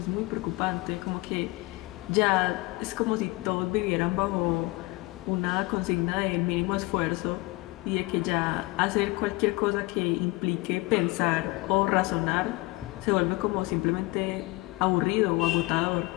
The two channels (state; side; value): quieter; right; 22.4 dB